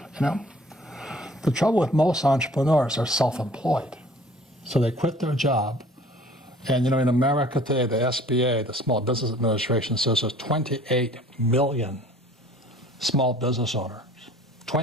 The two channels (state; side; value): normal; both; correlation 0.52